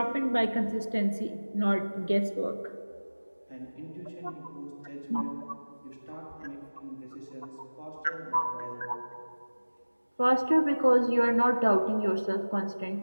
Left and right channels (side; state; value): both; inverted; correlation -1.00